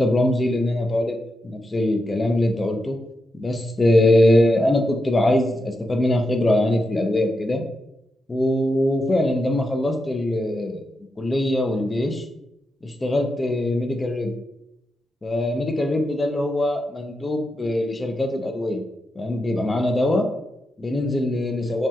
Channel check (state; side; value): normal; both; correlation 0.86